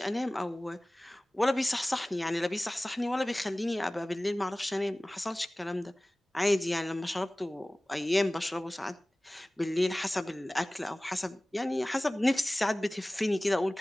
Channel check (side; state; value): both; normal; correlation 0.98